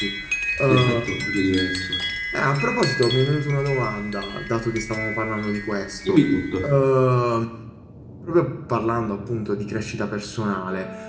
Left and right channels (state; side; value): identical; both; correlation 1.00